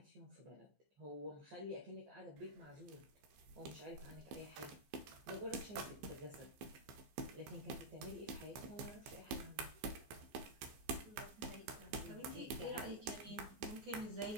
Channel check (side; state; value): left; late; 14 ms